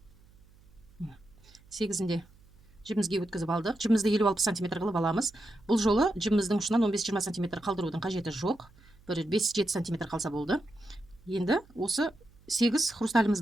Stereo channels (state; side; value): noise; right; hum, 27 dB below the sound